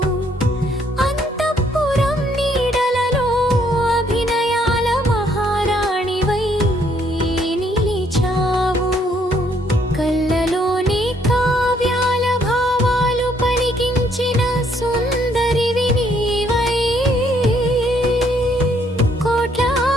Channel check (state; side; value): normal; both; correlation 0.68